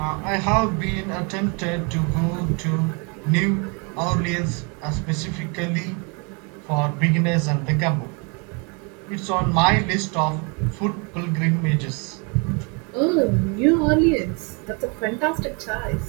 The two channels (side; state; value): left; quieter; 33.1 dB